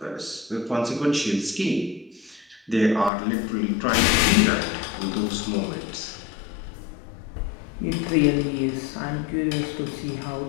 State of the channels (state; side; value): drops out; right; at 3.1 s